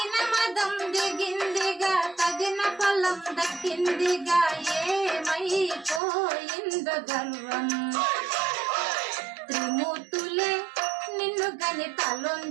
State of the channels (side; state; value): left; drops out; at 6.0 s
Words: మదం దిగిందిగా తగిన ఫలం దక్కిందిగా ఏమైపోయిందో గర్వం త్రిమూర్తులే నిన్ను గని